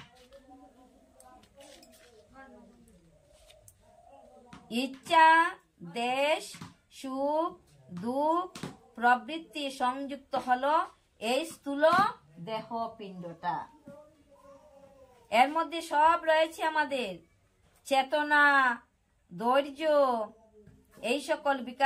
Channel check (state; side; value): identical; both; correlation 1.00